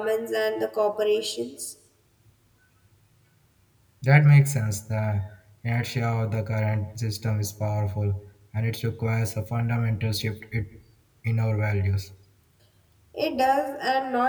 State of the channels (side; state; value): both; identical; correlation 1.00